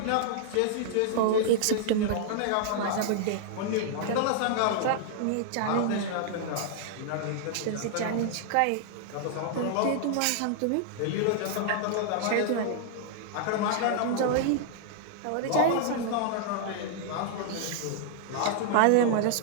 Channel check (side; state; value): both; different; correlation -0.01